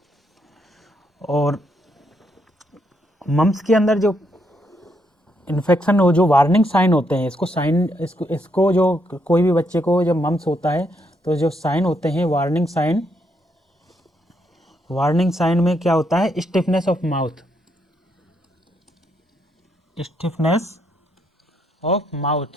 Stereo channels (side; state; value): both; normal; correlation 0.76